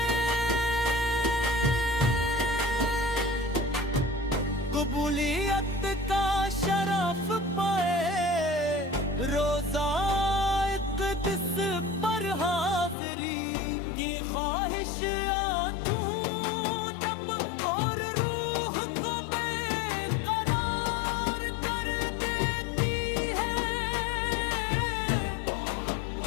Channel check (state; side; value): drops out; right; at 13.0 s